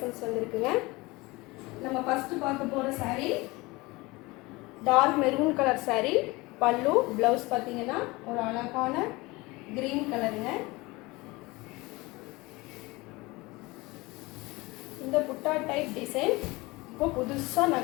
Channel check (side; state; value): right; quieter; 22.7 dB